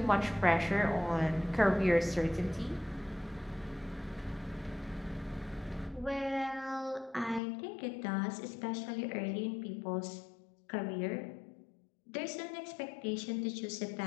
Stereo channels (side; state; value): right; drops out; at 7.4 s